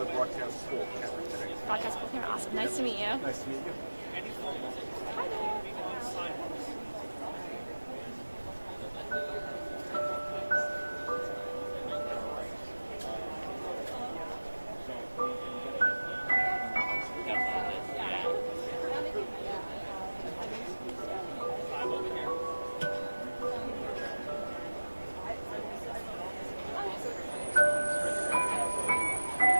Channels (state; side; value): inverted; both; correlation -1.00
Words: broadcast school camera today. Broadcast school camera. Awesome. Nice to meet you. Nice to meet you. Hi there.